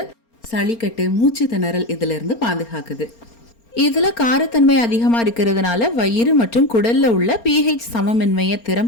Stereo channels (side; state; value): right; late; 4.3 ms